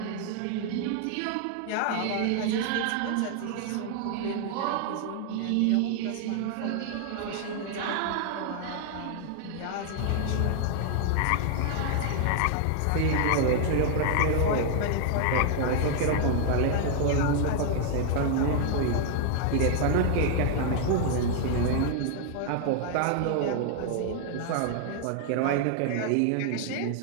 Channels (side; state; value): both; different; correlation 0.00